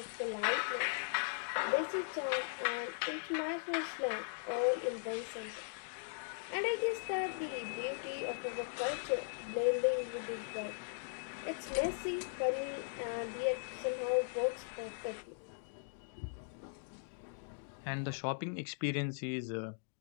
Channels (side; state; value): right; silent; digital silence